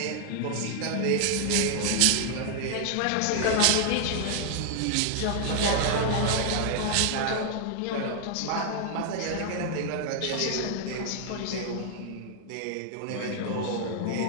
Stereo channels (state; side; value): different; both; correlation 0.00